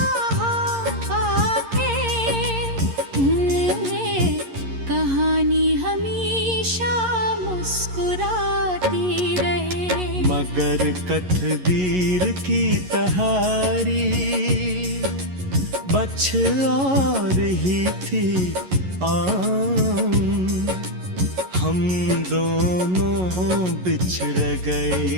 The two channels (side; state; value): left; late; 11 ms